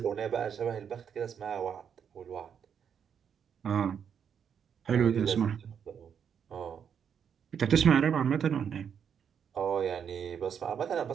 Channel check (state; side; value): quieter; left; 7.7 dB